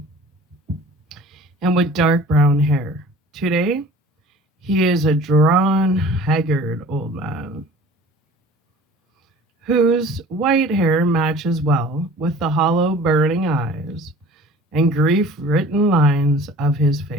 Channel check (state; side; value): normal; both; correlation 0.45